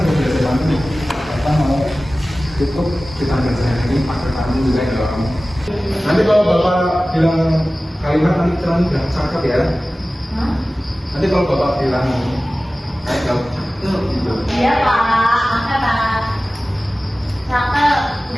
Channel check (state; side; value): normal; both; correlation 0.97